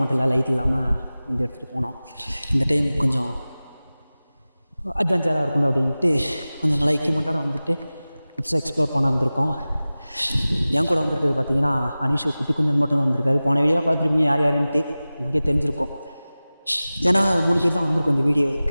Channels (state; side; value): inverted; both; correlation -0.97